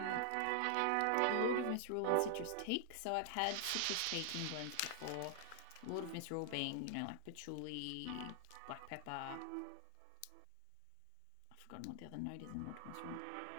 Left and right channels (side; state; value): both; different; correlation 0.00